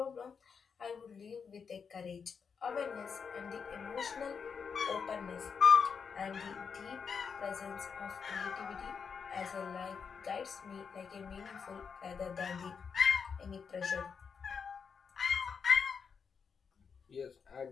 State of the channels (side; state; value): right; quieter; 6.1 dB